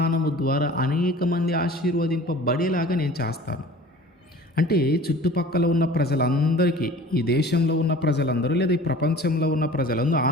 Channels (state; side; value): normal; both; correlation 0.44